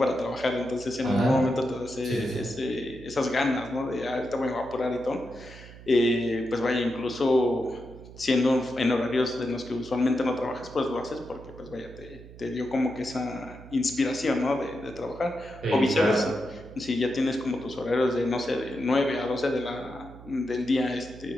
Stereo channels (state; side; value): noise; right; hum, 17 dB below the sound